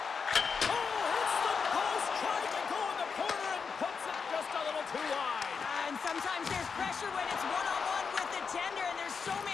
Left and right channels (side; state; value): right; quieter; 5.7 dB